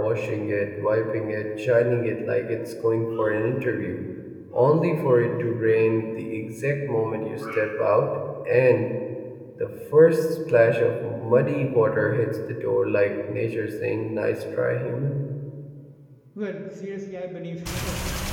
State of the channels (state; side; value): identical; both; correlation 1.00